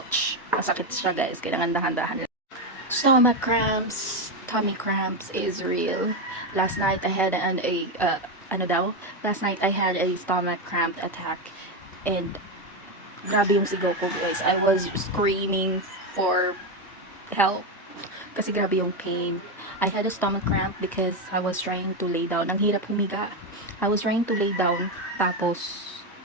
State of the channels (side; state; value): both; normal; correlation 0.10